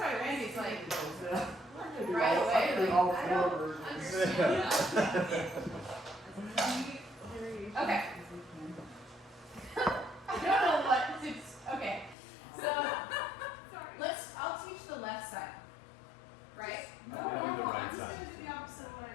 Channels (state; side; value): drops out; right; at 12.2 s